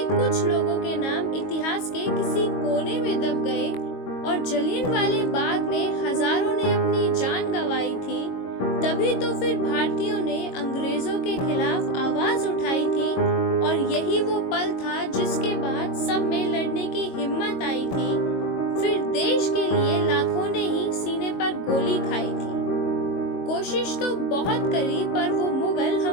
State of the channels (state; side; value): late; right; 22 ms